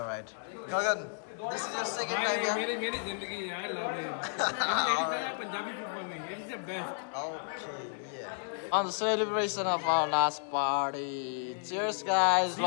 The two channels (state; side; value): silent; right; digital silence